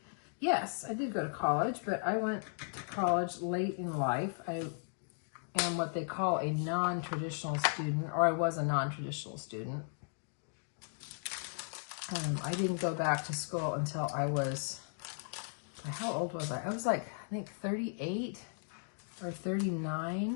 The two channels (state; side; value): silent; right; digital silence